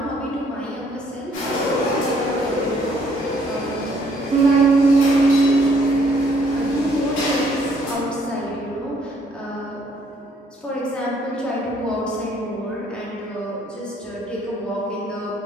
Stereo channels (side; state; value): both; normal; correlation 0.65